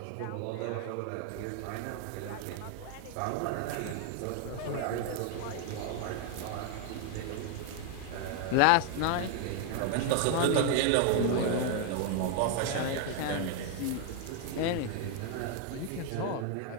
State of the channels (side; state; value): both; different; correlation 0.01